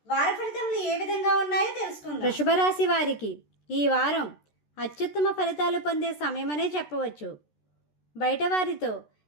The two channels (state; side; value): late; right; 13 ms